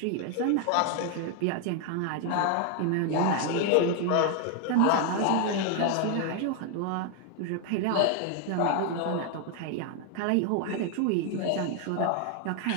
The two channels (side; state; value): both; different; correlation 0.00